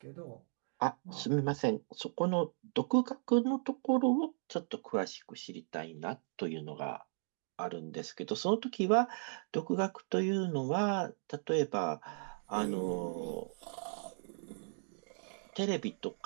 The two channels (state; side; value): silent; left; digital silence